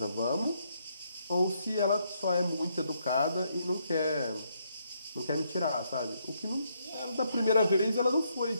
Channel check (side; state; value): both; inverted; correlation -0.75